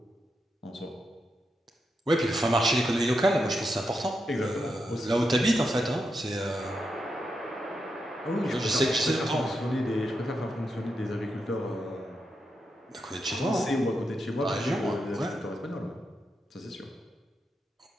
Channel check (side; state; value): both; normal; correlation 0.85